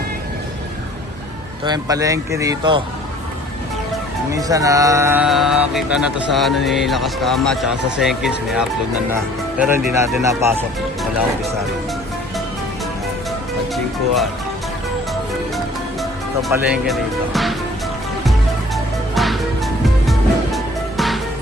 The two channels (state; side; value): normal; both; correlation 0.52